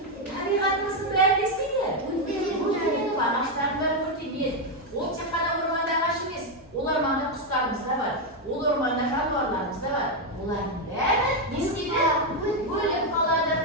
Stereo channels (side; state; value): both; normal; correlation 0.04